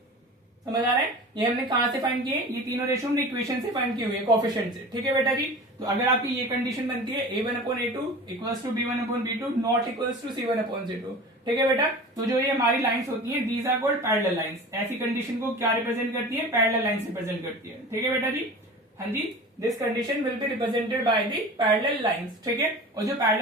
समझ आ रहा है। ये हमने कहां से फाइंड किए, ये तीनों रेशो हमने इक्वेशन से फाइंड किए हुए कोएफिशिएंट से। ठीक है बेटा जी, तो अगर आपकी ये कंडीशन बनती है a1/a2 equals to b1/b2 not equals to c1/c2। ठीक है बेटा, तो जो ये हमारी लाइंस होती हैं these are called parallel lines. ऐसी कंडीशन को क्या रिप्रेजेंट करती है, पैरेलल लाइंस रिप्रेजेंट करती है। ठीक है बेटा जी, हाँ जी, this condition will be represented by the parallel lines. ठीक है, और जो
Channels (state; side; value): normal; both; correlation 0.36